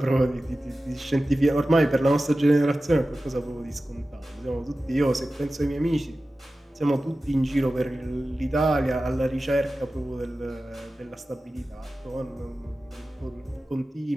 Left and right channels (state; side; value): normal; both; correlation 0.95